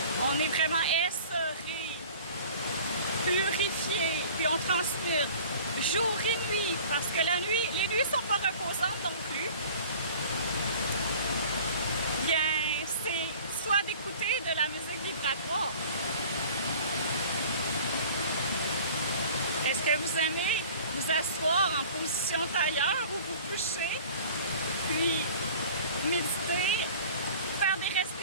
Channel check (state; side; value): inverted; both; correlation -0.45